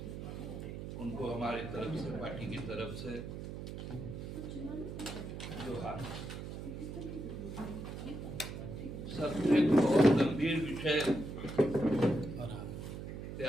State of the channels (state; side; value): noise; right; hum, 8 dB below the sound